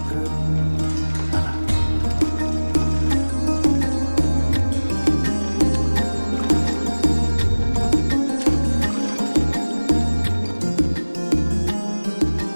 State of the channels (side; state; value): both; inverted; correlation -1.00